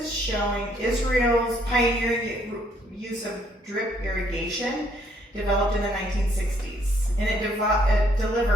showing Israel's pioneering use of drip irrigation developed in the 1960s. And it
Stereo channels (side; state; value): both; normal; correlation 0.68